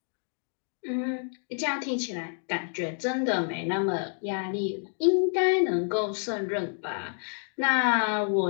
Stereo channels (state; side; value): silent; right; 57 dB below the other